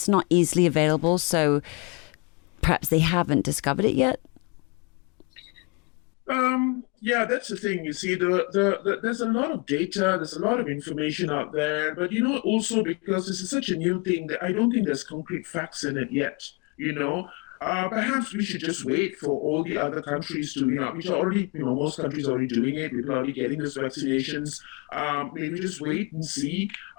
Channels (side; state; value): right; quieter; 31.5 dB